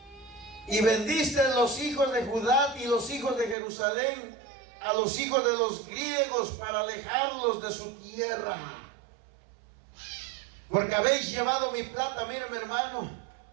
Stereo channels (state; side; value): drops out; left; at 3.6 s